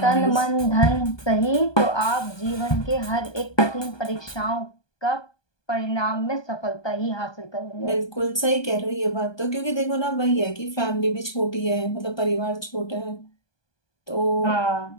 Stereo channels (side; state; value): right; late; 1.2 ms